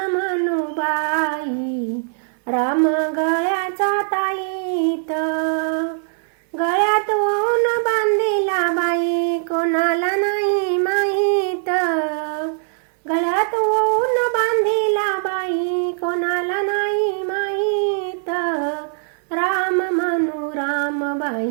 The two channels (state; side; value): silent; left; 62 dB below the other